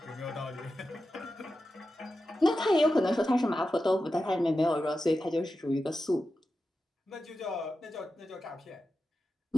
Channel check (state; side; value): normal; both; correlation 0.91